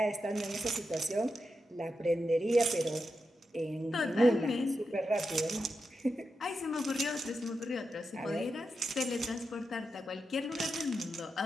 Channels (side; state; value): both; normal; correlation 0.88